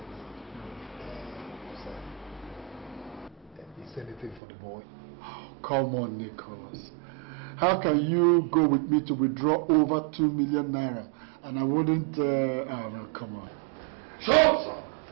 Is there anything for the boy? Oh, come on, Nicholas. How can you go with me to withdraw over 2 million naira and I wouldn't... oh, no, come on. Shut up, sir!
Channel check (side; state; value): left; drops out; at 4.4 s